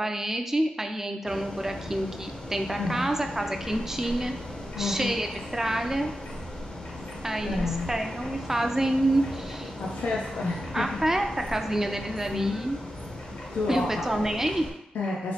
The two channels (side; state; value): both; normal; correlation 0.90